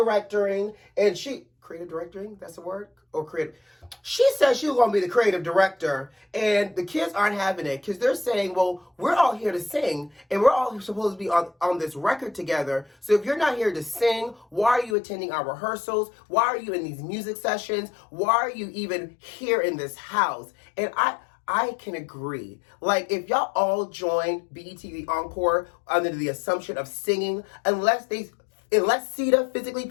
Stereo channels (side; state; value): right; drops out; at 15.0 s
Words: and creative directing? That's a word? Or creative? She said she was going to be the creative director, and the kids aren't having it because they're saying, well, we're all here to sing, and we're all supposed to be on this record together. So if you're not here to sing, why are you attending our rehearsals? Why are you in these music sessions? Why are you even here in this house? And I can agree. Like, if y'all all joined BET the Encore under the assumption of singing, unless Sita physically